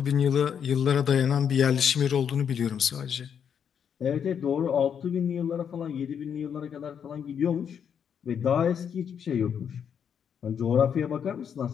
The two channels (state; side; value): quieter; right; 7.9 dB